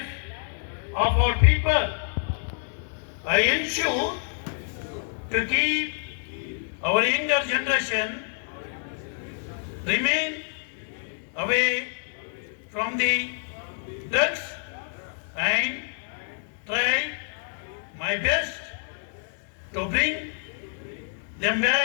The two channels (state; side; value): silent; right; 60 dB below the other